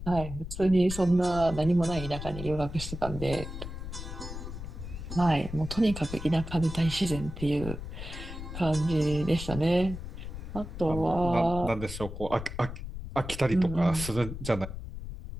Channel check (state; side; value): noise; left; rumble, 9 dB below the sound